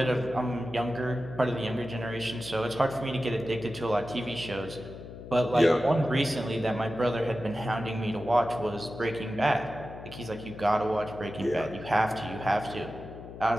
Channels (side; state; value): left; noise; hum, 13 dB below the sound